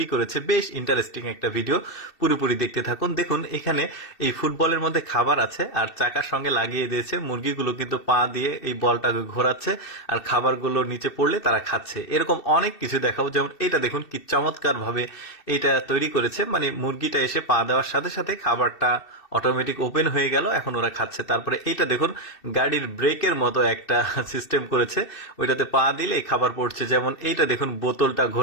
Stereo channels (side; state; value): right; late; 2.7 ms